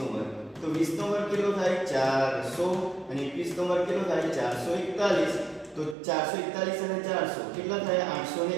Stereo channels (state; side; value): drops out; left; at 6.0 s